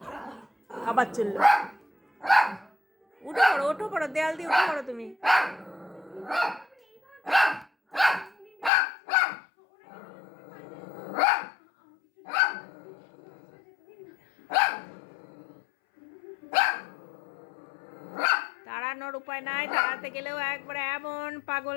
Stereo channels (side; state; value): right; drops out; at 8.7 s